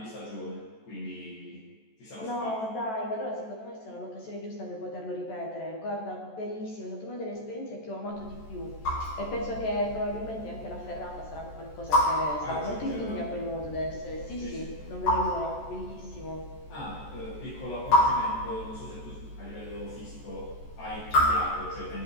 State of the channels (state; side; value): late; right; 14 ms